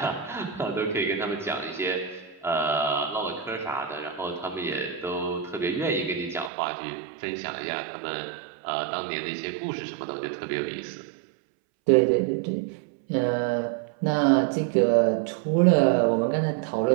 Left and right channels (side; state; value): left; drops out; at 6.5 s